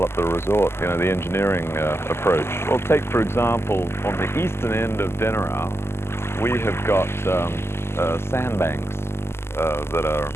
the resort, the engineering approach. Well, take for example, on the eastern end of Denarau, we have got sandbanks that are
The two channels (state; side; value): late; right; 0.12 ms